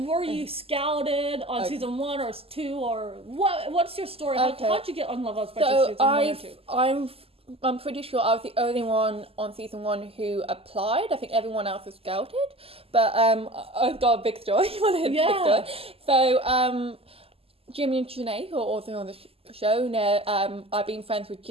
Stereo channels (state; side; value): late; left; 0.28 ms